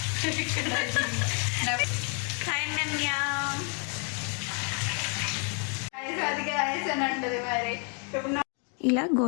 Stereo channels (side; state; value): right; quieter; 39.3 dB